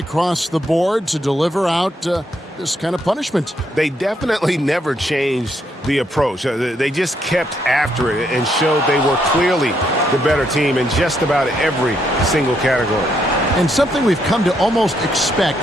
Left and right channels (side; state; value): both; normal; correlation 0.75